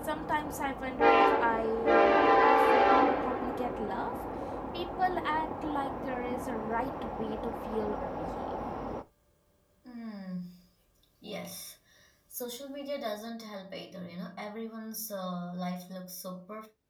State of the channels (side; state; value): both; identical; correlation 1.00